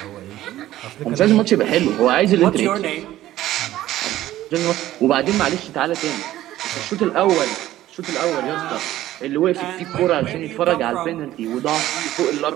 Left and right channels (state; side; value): quieter; left; 14.3 dB